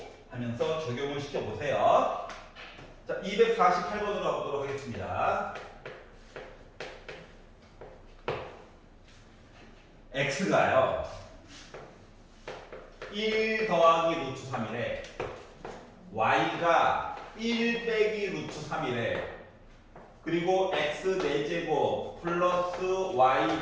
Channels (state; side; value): identical; both; correlation 1.00